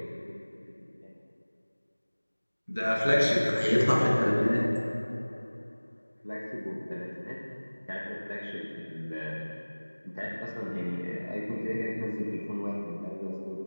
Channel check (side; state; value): both; inverted; correlation -1.00